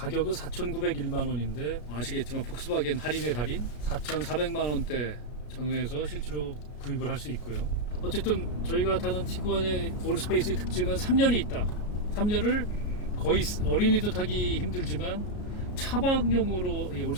4,901만 원인데 아시겠지만 폭스바겐 할인의 달인 4,400만 원대 전후에서 실제로 구입을 할 수 있고요. 어쨌든 저희가 타는 티구안의 올스페이스의 특징은 3열이 있다. 3열을 거의 어린이도 타기 힘들지만 차박용으로 이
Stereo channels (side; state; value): right; late; 33 ms